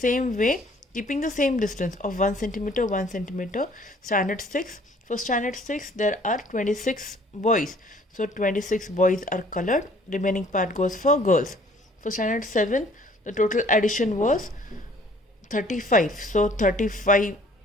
way, keeping the same distance of 1 cm, 1 cm, standard 6. For standard 6, there are 26 boys. So 26 boys are colored. Remaining part goes for girls. For standard 7, the total addition was 35. So 35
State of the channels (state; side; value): normal; both; correlation 0.57